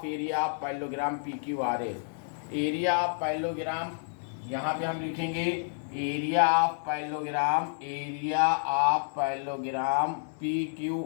area of parallelogram PQRS। Area of parallelogram यहाँ पे हम लिखेंगे area of parallelogram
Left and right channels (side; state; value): right; silent; digital silence